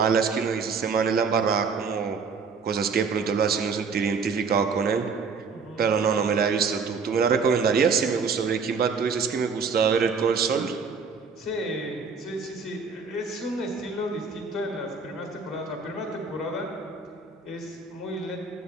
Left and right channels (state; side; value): quieter; left; 5.2 dB